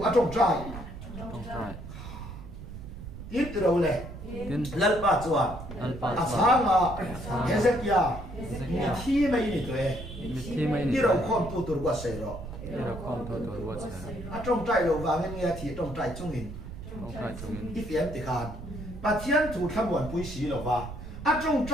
à trong trai tin từ đầu lệ lần ba chuan à sáng à thế giới kia mi thi mấy này tuổi đi đâu không tu tu quá sấy rồi à trong trai lo vàng nghe thì trong trai chung in if em thì khan bà thiên thủ tham quan bùi xí lầu va, à trong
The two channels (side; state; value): right; noise; rumble, 11 dB below the sound